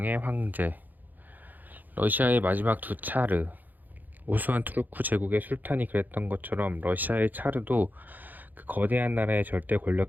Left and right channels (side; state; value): left; late; 0.085 ms